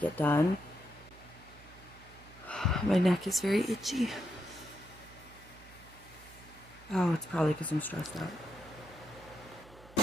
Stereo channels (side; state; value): right; noise; hum, 21 dB below the sound